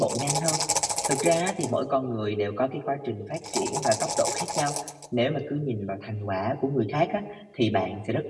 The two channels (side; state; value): both; identical; correlation 1.00